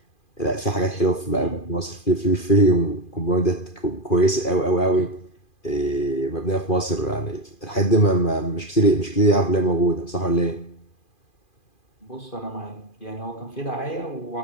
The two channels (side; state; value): right; late; 2.4 ms